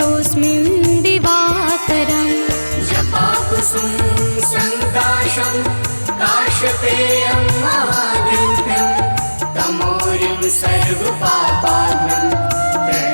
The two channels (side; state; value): both; inverted; correlation -1.00